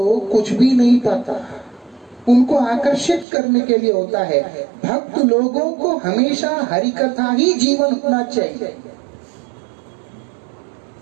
कुछ भी नहीं पता, उनको आकर्षित करने के लिए होता है। भक्त लोगों को हमेशा हरि कथा ही जीवन होना चाहिए,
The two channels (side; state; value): left; drops out; at 3.2 s